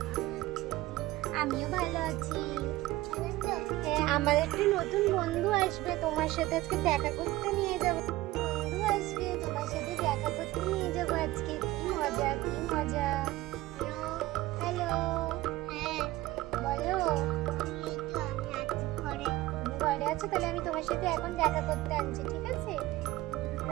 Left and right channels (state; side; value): quieter; left; 17.5 dB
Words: আমিও ভালো আছি। হ্যাঁ, আমার একটি নতুন বন্ধু আসবে, তোমার সাথে আজকে দেখা করতে নিয়ে যাব। বন্ধু আসবে, তোমার সাথে দেখা করতে নিয়ে যাব আজকে। কি মজা, কি মজা। হ্যালো, বলো। তুমি ঘরে আছো? তাহলে আমি তোমার সাথে এখন দেখা করতে আনছি, ঠিক আছে?